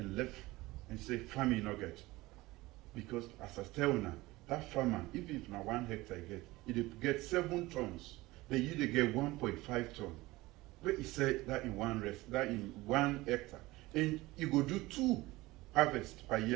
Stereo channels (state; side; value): quieter; left; 19.8 dB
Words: left and say, farming not get. Because as I tell now, that farmer, even if now 1 hectare it get 7 tons, they usually get 1.5 tons. But he said that in one hectare. And you go do 2 harvests per